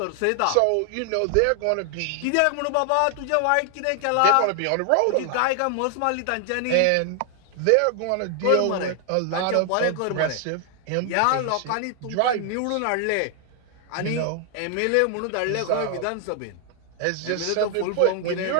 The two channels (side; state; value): both; different; correlation 0.00